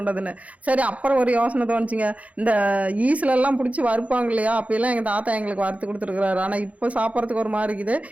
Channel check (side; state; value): left; late; 0.067 ms